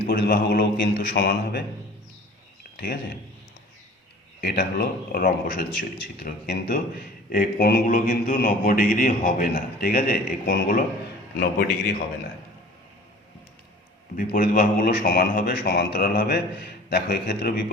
বাহুগুলোও কিন্তু সমান হবে, ঠিক আছে? এটা হলো রম্বসের চিত্র। কিন্তু এই কোণগুলো কিন্তু 90 ডিগ্রি হবে না, ঠিক আছে? এই কোণগুলো 90 ডিগ্রি হবে না। বিপরীত বাহুগুলো সমান হবে, সমান্তরাল হবে। দেখো এক্ষেত্রে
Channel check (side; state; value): both; normal; correlation 0.45